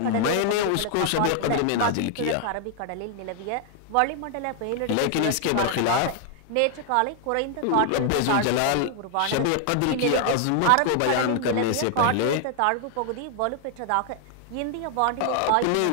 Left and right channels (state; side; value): different; both; correlation 0.00